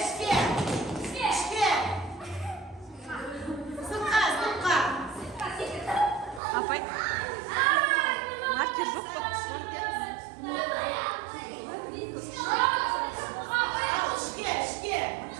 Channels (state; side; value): drops out; left; at 6.4 s